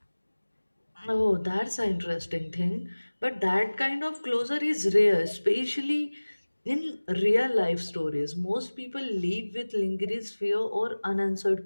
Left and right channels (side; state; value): both; inverted; correlation -1.00